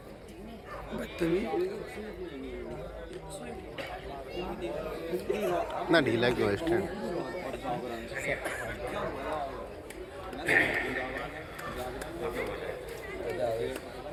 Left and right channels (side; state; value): both; identical; correlation 1.00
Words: بدتمیز اتنا ڈھیلا کیوں ہے اسٹینڈ